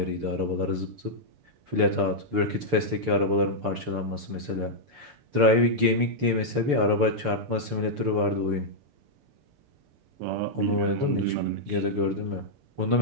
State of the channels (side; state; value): left; late; 6.9 ms